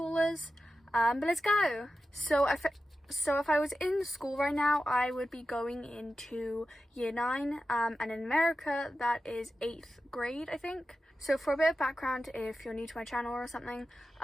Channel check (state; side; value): normal; both; correlation 0.92